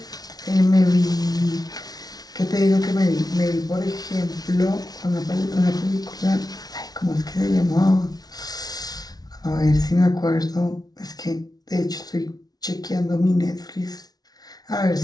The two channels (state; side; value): late; right; 0.19 ms